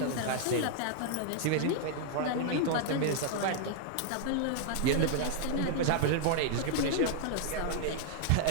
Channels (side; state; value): both; different; correlation -0.01